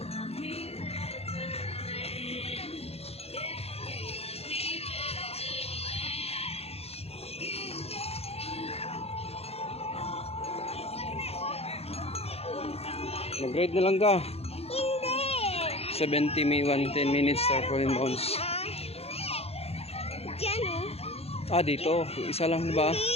Mag-ride na lang ka. Hindi. 70 may 110 minutes tarpaulin bounce. Dyan o. Ah, dito. Isa lang ba?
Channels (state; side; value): late; right; 0.29 ms